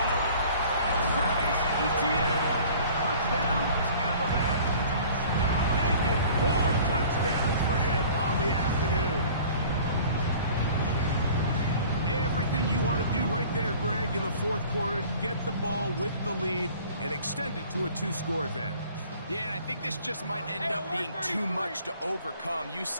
one. Travis Etienne. Touchdown, Tampa Bay. Making 4 touchdowns for him on the afternoon. Everything you want to do right there, Greg, in the fourth quarter. Get the ball with the lead and extend it to a 2-score advantage. Yeah, and I think this just might end up being too much to overcome. You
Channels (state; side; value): inverted; both; correlation -0.48